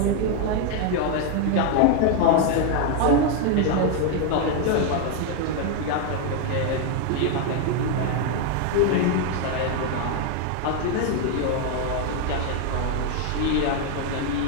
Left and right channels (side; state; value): both; different; correlation 0.01